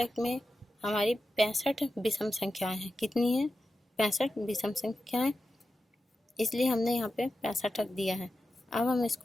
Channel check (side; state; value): both; normal; correlation 0.91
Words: में हमारी 65 विषम संख्याएं हैं। कितनी हैं, 65 विषम संख्याएं, इसलिए हमने यहाँ पे 65 रख दिया है। अब हम